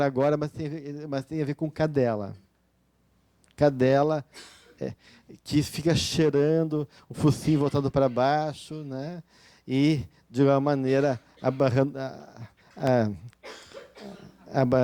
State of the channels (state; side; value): identical; both; correlation 1.00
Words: agora, mas tem a ver com cadela. Cadela que fica cheirando, o focinho voltado para baixo, né? E, de uma maneira,